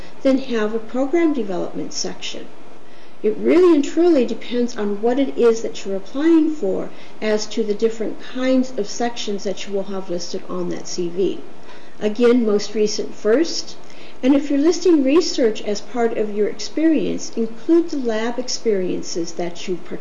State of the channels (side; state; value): both; identical; correlation 1.00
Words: then have a program development section. It really and truly depends on what it is that you're applying for as to the different kinds of sections that you will have listed on that CV. Again, most recent first. And if you're listing research as part of your experience, include the lab experiences that you